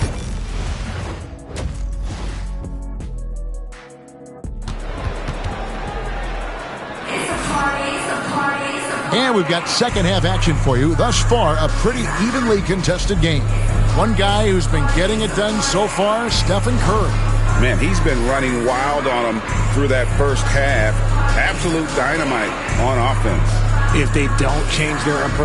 And we've got second half action for you. Thus far, a pretty evenly contested game. One guy who's been getting it done so far, Stephen Curry. Man, he's been running wild on them through that first half. Absolute dynamite on offense. If they don't change their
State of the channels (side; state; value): both; identical; correlation 1.00